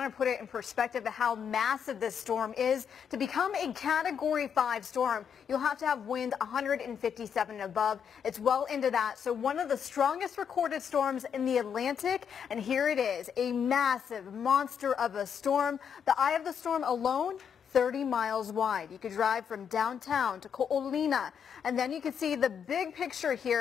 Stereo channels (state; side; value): quieter; right; 7.5 dB